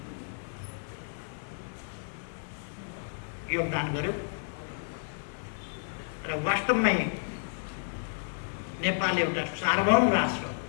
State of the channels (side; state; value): right; silent; 57 dB below the other